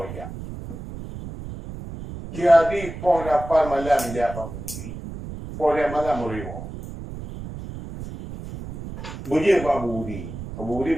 aja. Jadi pon apa malam mijak apa budi. Pon malam muriwo. Budi apa budi. Budi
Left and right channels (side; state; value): right; noise; rumble, 10 dB below the sound